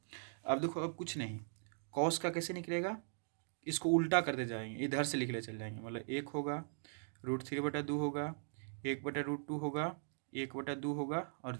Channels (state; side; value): silent; left; digital silence